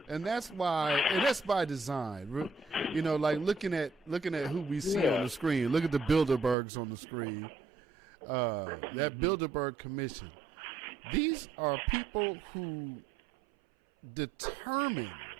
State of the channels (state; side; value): drops out; left; at 6.6 s